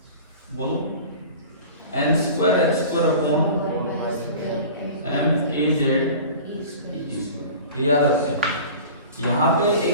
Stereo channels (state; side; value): inverted; both; correlation -0.40